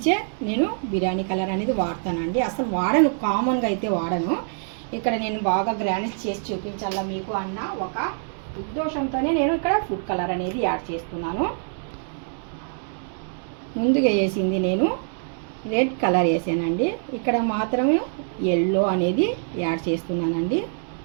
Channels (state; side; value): silent; left; digital silence